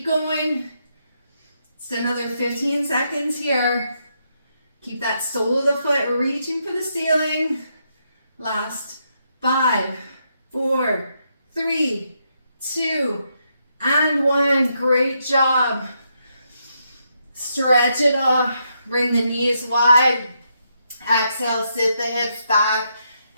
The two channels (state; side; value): inverted; both; correlation -0.79